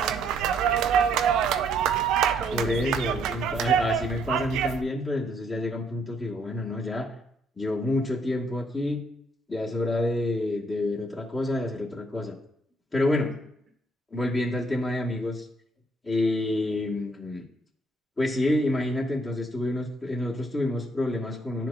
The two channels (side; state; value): both; normal; correlation 0.68